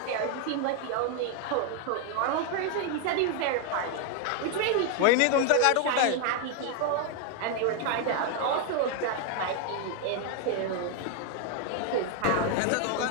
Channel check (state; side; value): different; both; correlation 0.01